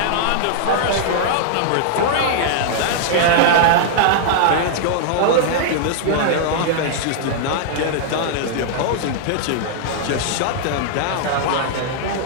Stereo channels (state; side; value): different; both; correlation -0.01